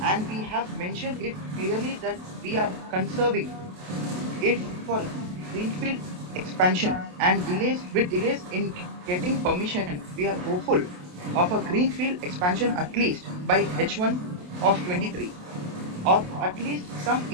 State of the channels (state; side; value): late; left; 28 ms